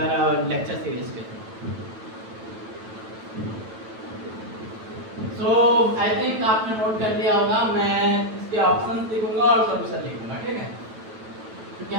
लेक्चर सीरीज के। सो आई थिंक आपने नोट कर लिया होगा, मैं इसके ऑप्शंस लिखूंगा और सॉल्यूशन लिखूंगा, ठीक है। क्योंकि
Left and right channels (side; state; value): left; late; 9.1 ms